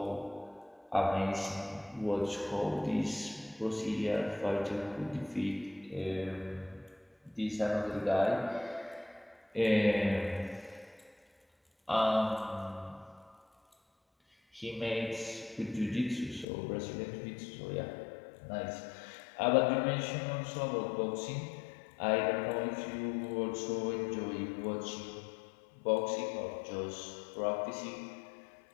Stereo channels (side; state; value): right; drops out; at 16.4 s